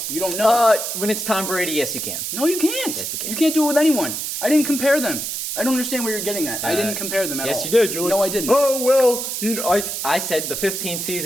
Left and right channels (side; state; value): right; noise; hiss, 4 dB below the sound